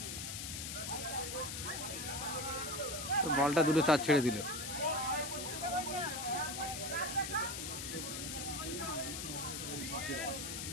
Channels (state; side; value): noise; left; hiss, 5 dB below the sound